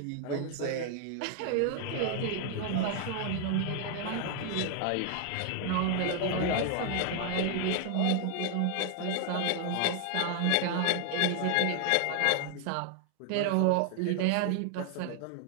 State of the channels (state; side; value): different; both; correlation 0.00